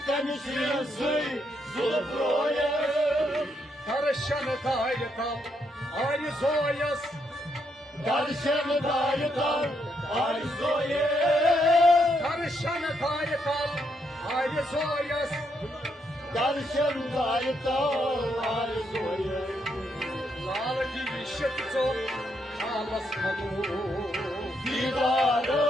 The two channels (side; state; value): both; normal; correlation 0.77